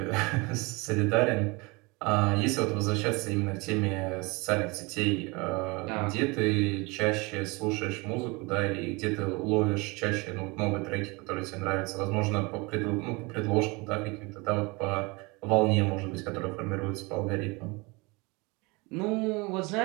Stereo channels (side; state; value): left; quieter; 26.5 dB